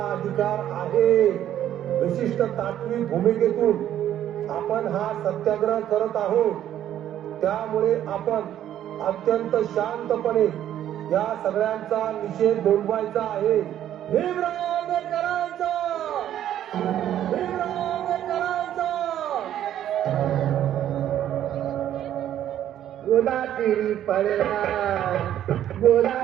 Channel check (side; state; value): left; quieter; 11.3 dB